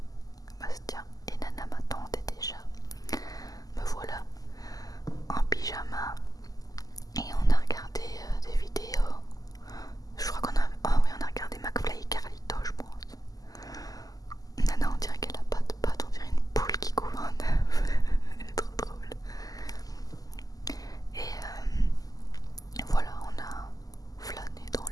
Bastien et Nana m'attendaient déjà. Me voilà en pyjama et on a regardé des vidéos. Je crois qu'on a... Oh oui, on a regardé McFly et Carlito, je pense. Nana, on dirait qu'elle a pas de pattes, on dirait une poule qui couvre un œuf. Elle est trop drôle. Et voilà, on a flâné dans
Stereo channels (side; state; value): right; late; 0.17 ms